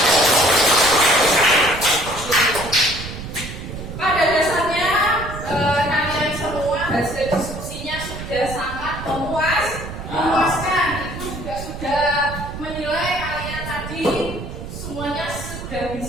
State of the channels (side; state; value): right; noise; rumble, 9 dB below the sound